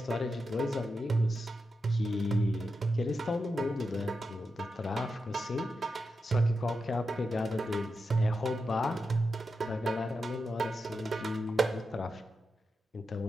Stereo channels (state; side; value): normal; both; correlation 0.88